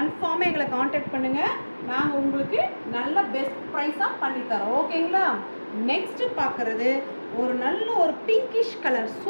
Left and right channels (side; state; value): both; inverted; correlation -1.00